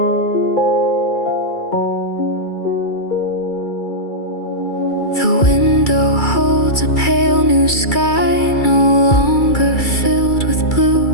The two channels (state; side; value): late; right; 2.3 ms